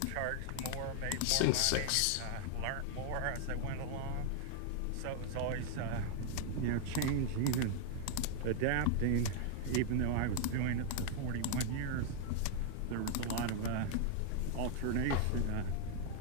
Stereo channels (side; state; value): both; different; correlation 0.00